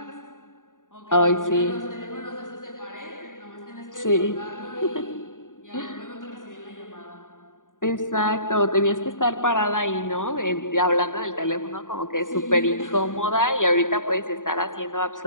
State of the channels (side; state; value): right; late; 0.88 ms